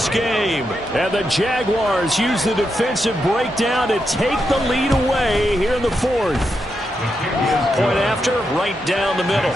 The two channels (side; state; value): both; normal; correlation 0.84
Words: game. And the Jaguars use the defensive breakdown to take the lead away here in the fourth. Point after, right down the middle.